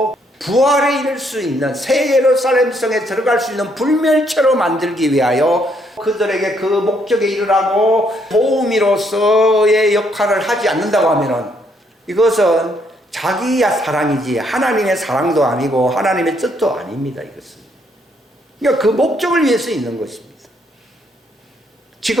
부활에 이를 수 있는, 새 예루살렘 성에 들어갈 수 있는 불멸체로 만들기 위하여 그들에게 그 목적에 이르라고 도우미로서의 역할을 하지 않는다고 하면은, 이것은 자기야 사랑이지 하나님의 사랑도 아니고 하나님의 뜻도 아닙니다. 이것은 그러니까 그 목적을 위해서 있는 것입니다.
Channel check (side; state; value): both; normal; correlation 0.71